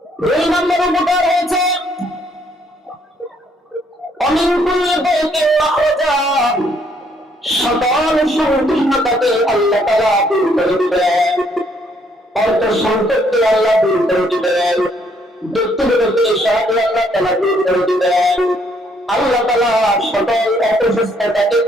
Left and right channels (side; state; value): both; normal; correlation 0.68